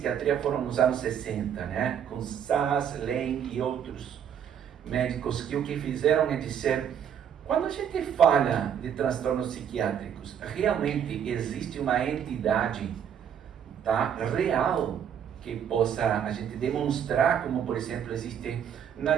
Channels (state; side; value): quieter; left; 8.6 dB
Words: foram nos anos 60, né? Com Sass, Lane e outros médicos que o que fizeram é dizer, quando a gente fala de transtornos psiquiátricos, realmente existe uma entidade, tá, real que possa a gente demonstrar, como por exemplo existe na